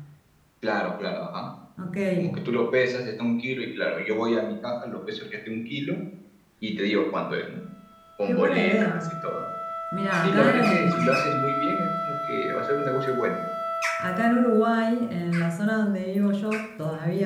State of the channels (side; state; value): both; identical; correlation 1.00